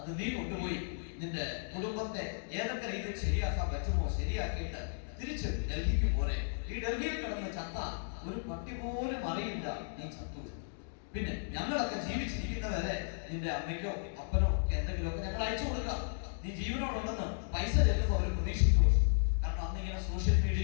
നീ കൊണ്ടുപോയി നിന്റെ കുടുംബത്തെ ഏതൊക്കെ രീതിയിൽ ശരിയാക്കാൻ പറ്റുമോ ശരിയാക്കിയിട്ട് തിരിച്ച് ഡൽഹിക്ക് പോരെ. ഈ ഡൽഹിയിൽ കിടന്ന് ചത്ത ഒരു പട്ടി പോലും അറിയില്ല നീ ചത്തു. പിന്നെ ഞങ്ങളൊക്കെ ജീവിച്ചിരിക്കുന്നവരെ നിന്റെ അമ്മയ്ക്കോ അപ്പനോ എന്തെങ്കിലുമൊക്കെ ഞങ്ങൾ അയച്ചു കൊടുക്കാം. നീ ജീവനോടുണ്ടെന്ന് പൈസ ചെല്ലുമ്പോൾ അവർ പ്രതീക്ഷിച്ചു. കാരണം അന്നിങ്ങനെ സോഷ്യൽ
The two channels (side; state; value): right; silent; digital silence